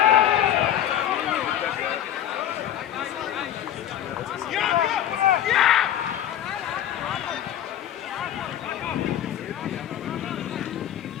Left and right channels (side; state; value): right; quieter; 10.9 dB